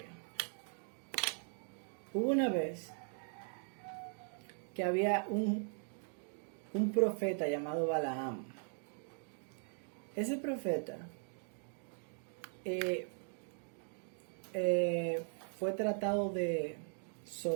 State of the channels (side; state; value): left; silent; 51 dB below the other